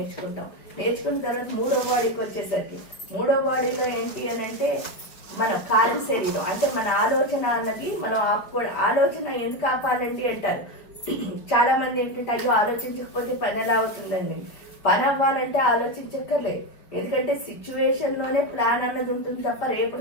నేర్చుకున్న తర్వాత 3వ బాడీకి వచ్చేసరికి 3వ బాడీలో ఏంటి అని అంటే మన కార్య శరీరం అంటే మన ఆలోచన అన్నది మనం ఆలోచన ఎందుకు ఆపాలండి అంటారు. చాలా మంది ఏంటంటే అయ్యో ఆలోచించకపోతే పని ఎలా అవుతుందండి. పని అవ్వాలంటే ఆలోచించక్కర్లేదు. ఎందుకంటే సిచ్యువేషన్లోనే ప్లాన్ అన్నది ఉంటుంది తప్ప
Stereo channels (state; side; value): late; right; 5.3 ms